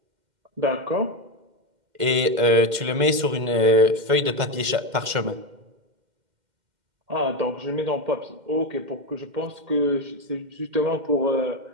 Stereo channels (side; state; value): left; late; 2.1 ms